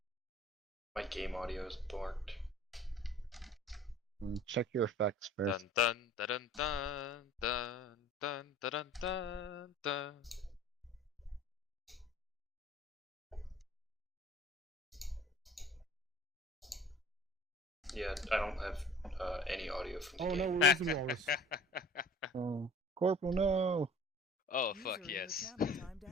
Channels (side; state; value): both; normal; correlation 0.46